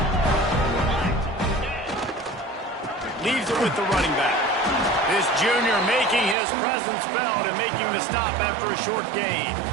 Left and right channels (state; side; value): drops out; left; at 6.4 s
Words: Leaves it with the running back. This junior making his presence felt and making the stop after a short gain.